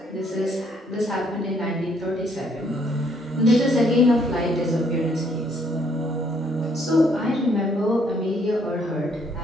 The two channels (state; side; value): normal; both; correlation 0.67